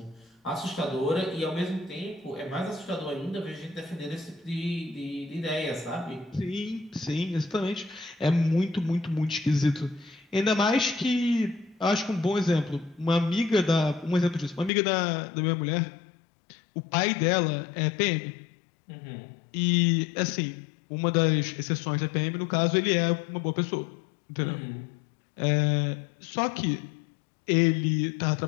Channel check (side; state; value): right; drops out; at 14.7 s